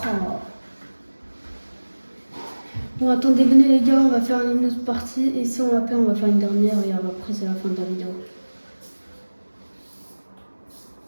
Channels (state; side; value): inverted; both; correlation -1.00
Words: Bon, attendez, venez les gars, on va faire une autre partie. Et si on va faire, on va faire une dernière. Et après, c'est la fin de la vidéo.